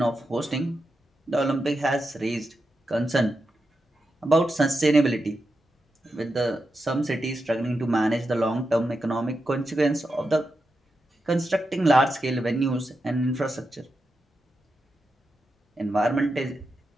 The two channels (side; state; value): both; normal; correlation 0.88